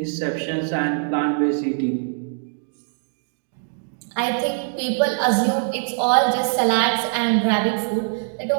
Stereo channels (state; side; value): silent; left; digital silence